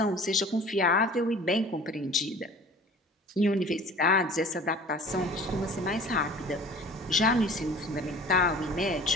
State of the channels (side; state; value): both; normal; correlation 0.45